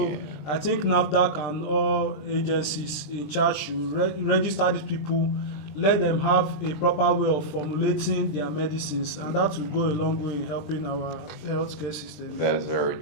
yeah. I think NAFDAC and all agencies in charge should register these people, let them have a proper way of formulating their medicines, and that will go a long way in helping our healthcare system. That's very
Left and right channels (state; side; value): late; right; 20 ms